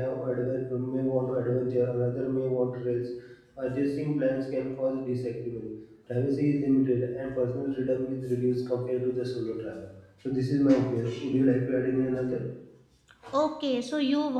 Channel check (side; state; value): both; identical; correlation 1.00